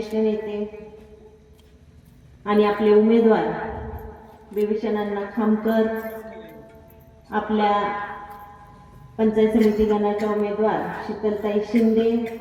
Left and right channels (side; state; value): both; identical; correlation 1.00